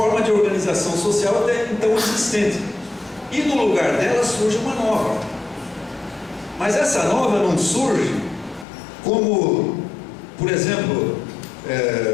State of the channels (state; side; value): drops out; right; at 8.7 s